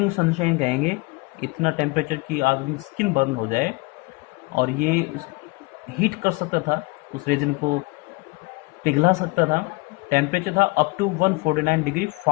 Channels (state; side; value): quieter; right; 25.7 dB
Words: सनशाइन कहेंगे, इतना टेम्परेचर की आदमी की स्किन बर्न हो जाए, और ये हीट कर सकता था, उस रेजिन को पिघला सकता था. टेम्परेचर था up to 149 degree